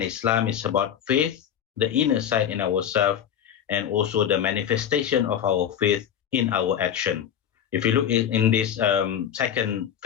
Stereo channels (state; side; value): quieter; right; 9.3 dB